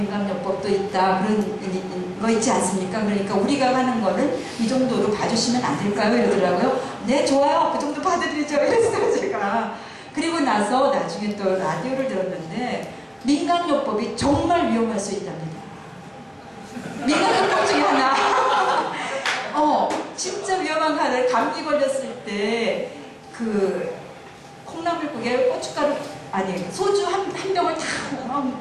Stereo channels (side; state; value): both; identical; correlation 1.00